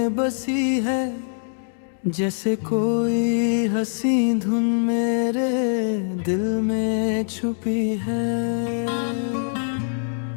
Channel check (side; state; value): right; silent; digital silence